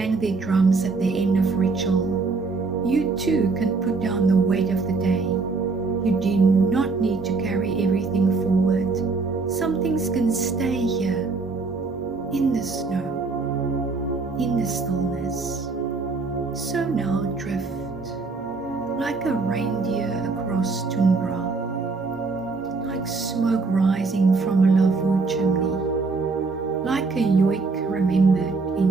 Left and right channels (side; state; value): left; quieter; 4.1 dB